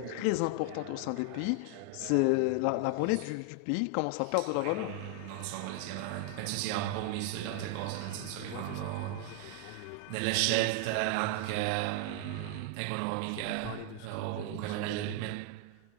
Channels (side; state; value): both; different; correlation 0.00